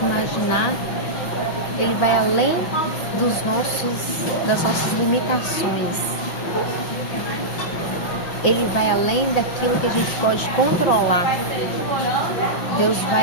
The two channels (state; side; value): late; right; 5.9 ms